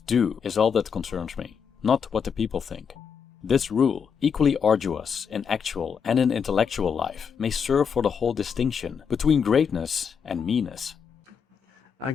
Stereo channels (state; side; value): quieter; right; 6.7 dB